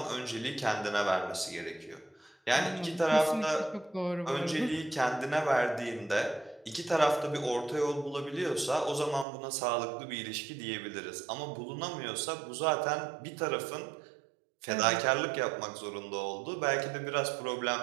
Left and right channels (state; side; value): drops out; left; at 9.2 s